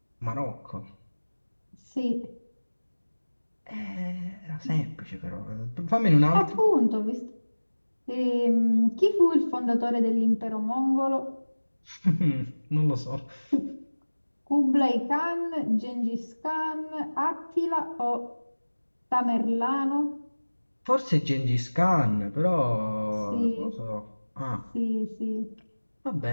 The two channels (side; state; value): both; inverted; correlation -1.00